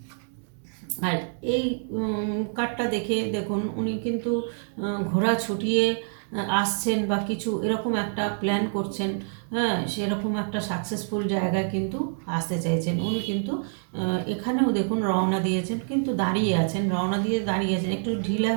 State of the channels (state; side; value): silent; left; 61 dB below the other